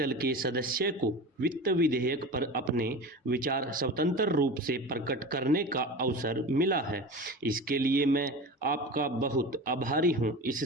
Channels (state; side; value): normal; both; correlation 0.31